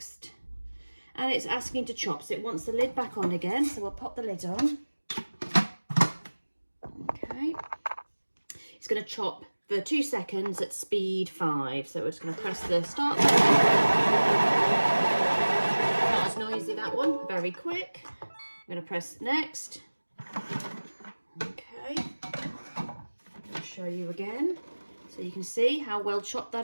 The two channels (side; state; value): both; inverted; correlation -1.00